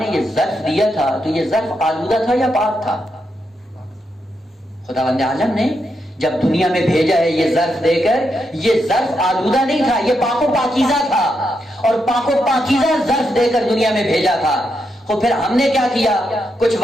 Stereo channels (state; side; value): normal; both; correlation 0.82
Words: یہ ظرف دیا تھا تو یہ ظرف آلودہ تھا یا پاک تھا؟ خداوند عالم نے جب دنیا میں بھیجا ہے یہ ظرف دے کر، یہ ظرف آلودہ نہیں تھا، یہ پاک و پاکیزہ تھا، اور پاک و پاکیزہ ظرف دے کر دنیا میں بھیجا تھا. تو پھر ہم نے کیا کیا؟ کچھ